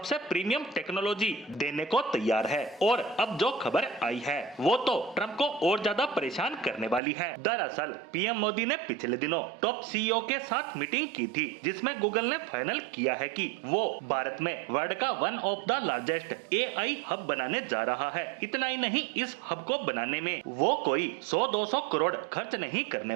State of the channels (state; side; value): drops out; left; at 7.0 s